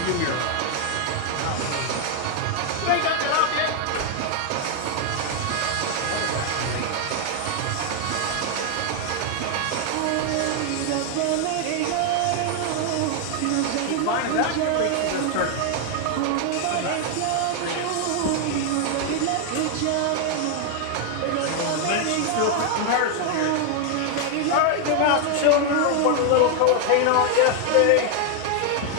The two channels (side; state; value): both; different; correlation 0.00